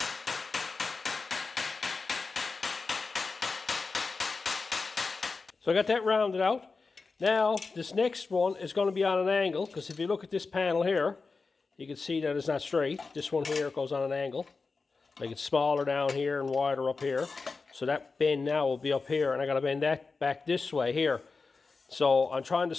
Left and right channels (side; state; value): right; quieter; 4.3 dB